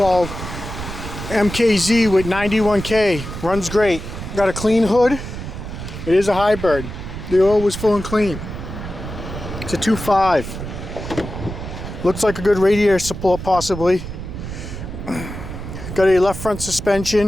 MKZ with 91K. Runs great. Got a clean hood. It is a hybrid. The oil was full and clean. It's a 2.5. Looks like a good radiator support possibly. Got a left front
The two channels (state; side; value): noise; right; rumble, 8 dB below the sound